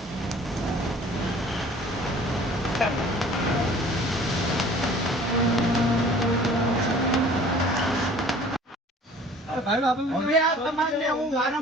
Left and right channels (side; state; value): both; normal; correlation 0.49